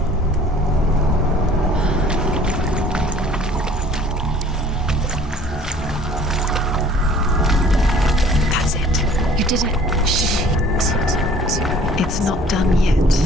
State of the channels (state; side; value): normal; both; correlation 0.52